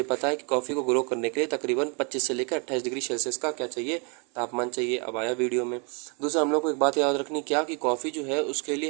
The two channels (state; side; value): quieter; left; 35.3 dB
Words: पता है कि कॉफ़ी को ग्रो करने के लिए तकरीबन 25 से लेकर 28 डिग्री सेल्सियस का क्या चाहिए, तापमान चाहिए। अब आया वीडियो में। दूसरा हम लोग को एक बात याद रखनी, क्या कि कॉफ़ी जो है उसके लिए